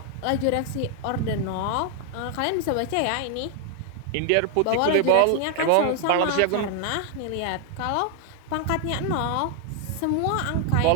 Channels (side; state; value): both; different; correlation 0.00